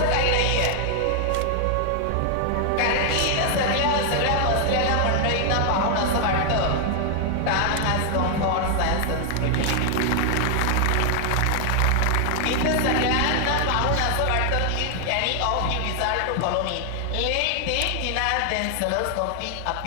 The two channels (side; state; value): both; different; correlation 0.00